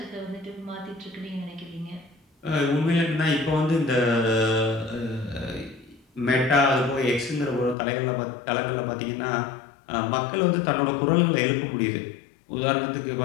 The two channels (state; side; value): drops out; right; at 7.8 s